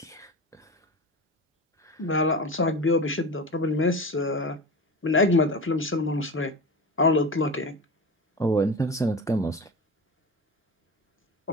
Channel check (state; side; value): normal; both; correlation 0.29